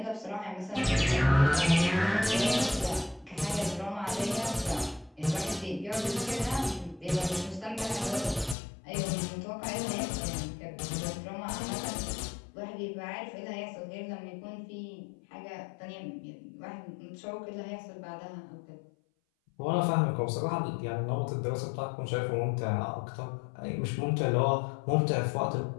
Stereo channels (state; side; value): drops out; right; at 8.6 s